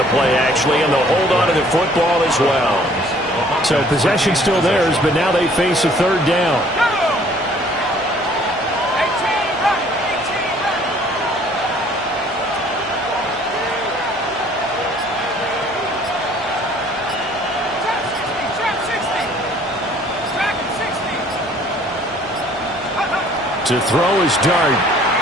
play, actually, and they'll hold on to the football as well. So possession still theirs, but now they face a 3rd down. To throw is Dart.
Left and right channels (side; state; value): both; normal; correlation 0.57